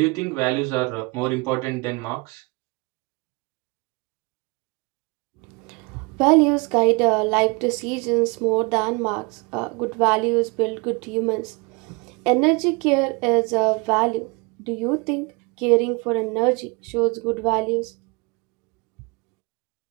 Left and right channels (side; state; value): left; quieter; 28.7 dB